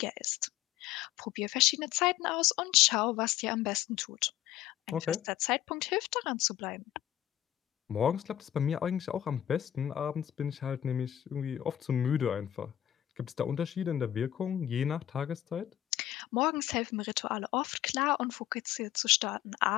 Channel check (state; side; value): quieter; right; 12.1 dB